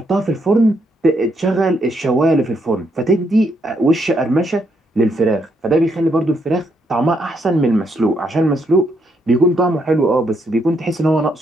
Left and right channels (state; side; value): normal; both; correlation 0.76